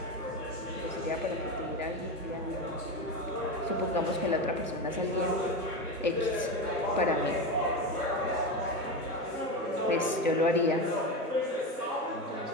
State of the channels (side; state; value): both; normal; correlation 0.19